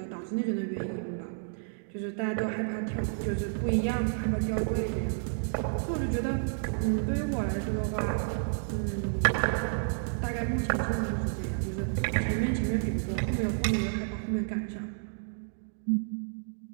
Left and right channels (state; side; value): silent; left; digital silence